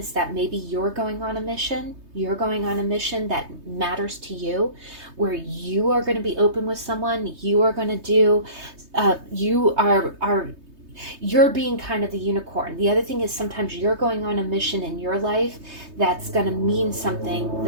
that maybe you're going on a mission that matters to you, where you are going to be open with someone. You are going to do, you're being kind of the unicorn. The other thing is sometimes you're going on a mission in your life that's going to mean something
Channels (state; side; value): late; left; 3.2 ms